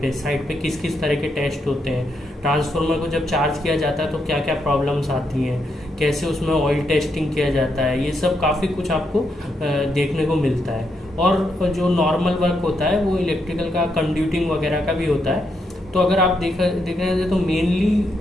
पे किस किस तरह के टेस्ट होते हैं। ट्रांसफार्मर को जब चार्ज किया जाता है तो क्या क्या प्रॉब्लम्स आती हैं, कैसे उसमें ऑयल टेस्टिंग किया जाता है, ये सब काफ़ी कुछ आपको देखने को मिलता है। और जो नॉर्मल वर्क होता है वो इलेक्ट्रिकल का कंड्यूटिंग वगैरह का भी होता है। तो अगर आप देखने जाए तो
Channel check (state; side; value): normal; both; correlation 0.80